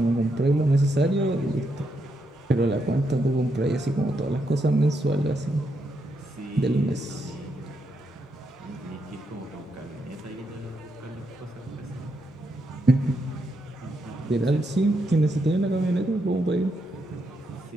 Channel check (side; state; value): both; normal; correlation 0.81